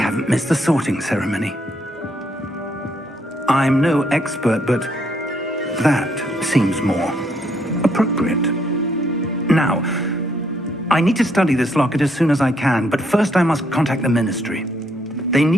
missed the sorting ceremony. I'm no expert, but that seems more appropriate. Now, I need to study this locket as soon as I can, but first I must contact the Ministry. They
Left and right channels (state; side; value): normal; both; correlation 0.72